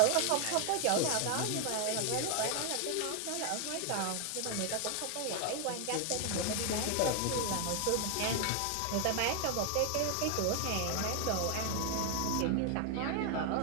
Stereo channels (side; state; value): both; different; correlation 0.00